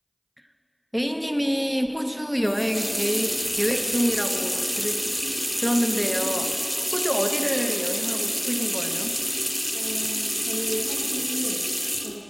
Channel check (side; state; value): both; identical; correlation 1.00